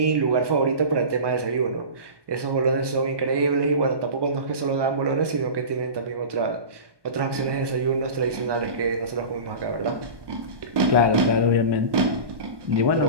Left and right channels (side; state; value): left; late; 1.2 ms